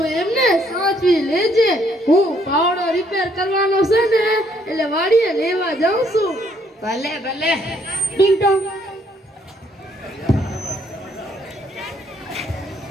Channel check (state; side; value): normal; both; correlation 0.68